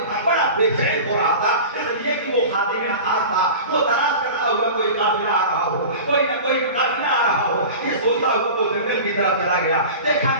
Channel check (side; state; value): both; inverted; correlation -0.34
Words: بڑا بے چین ہو رہا تھا، اس لیے کہ وہ خادم خاص تھا، وہ تلاش کرتا ہوا کوئی قافلہ آ رہا ہو، کوئی نہ کوئی قافلہ آ رہا ہو، یہ سوچتا ہوا وہ جنگل کی طرف چلا گیا، دیکھا